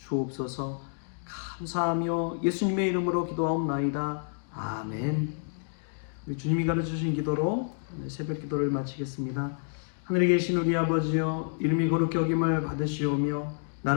감사하며 예수님의 이름으로 기도하옵나이다. 아멘. 우리 주님이 가르쳐주신 기도로 새벽 기도를 마치겠습니다. 하늘에 계신 우리 아버지여, 이름이 거룩히 여김을 받으시오며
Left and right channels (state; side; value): silent; right; digital silence